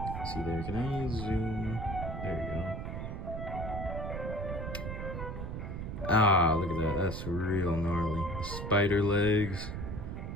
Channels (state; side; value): noise; right; rumble, 5 dB below the sound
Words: See there, can I zoom? There you go. Ah, look at that. That's real gnarly. The spider legs,